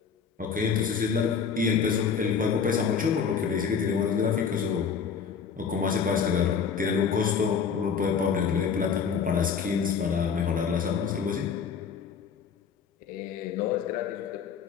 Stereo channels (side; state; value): right; quieter; 6.5 dB